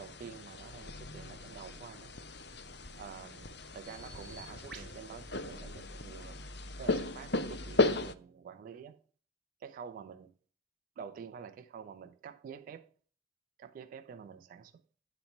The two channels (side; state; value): both; normal; correlation -0.05